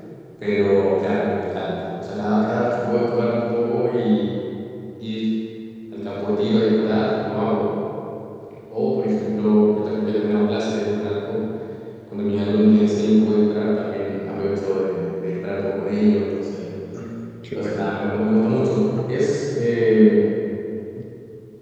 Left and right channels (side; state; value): both; identical; correlation 1.00